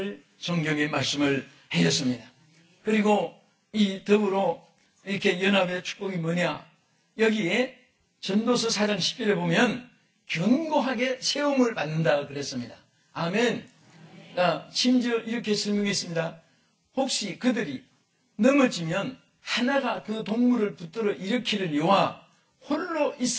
성경에 말씀을 해줬습니다. 그리고 이 더불어 이렇게 연합의 축복이 뭐냐? 여기에 전도서 4장 10절에 보면 견고하게 세움을 받는다 그랬습니다. 아멘. 심지어 이렇게 설명했습니다. 혹시 그들이 넘어지면 하나가 그 동물을 붙들어 일으키려니와 홀로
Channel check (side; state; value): both; identical; correlation 1.00